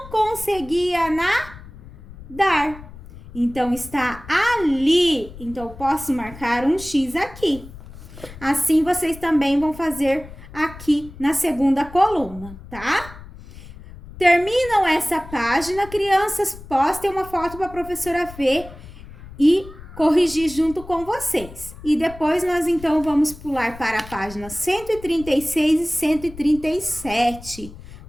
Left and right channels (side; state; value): left; noise; rumble, 16 dB below the sound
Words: conseguia nadar. Então, está ali. Então, eu posso marcar um X aqui. Assim, vocês também vão fazer aqui na segunda coluna, tá? Terminam essa página, crianças, postem uma foto para a professora ver e corrigir junto com vocês. E depois nós, então, vamos pular para a página 136 e 137.